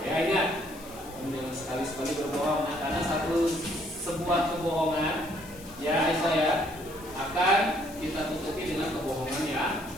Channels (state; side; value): noise; left; hiss, 19 dB below the sound